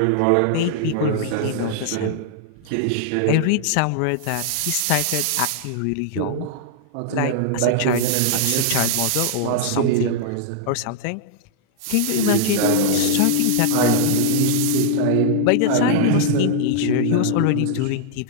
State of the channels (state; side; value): different; both; correlation -0.01